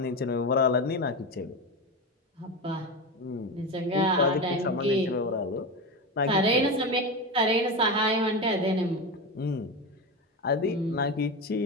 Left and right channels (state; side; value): normal; both; correlation 0.20